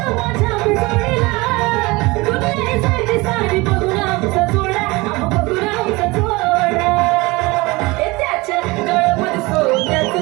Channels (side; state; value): left; quieter; 23.2 dB